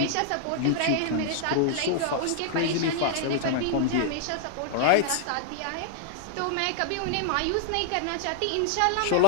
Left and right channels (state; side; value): different; both; correlation -0.01